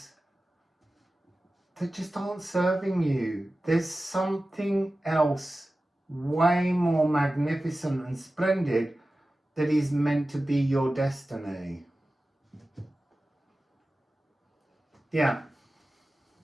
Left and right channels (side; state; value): both; normal; correlation 0.95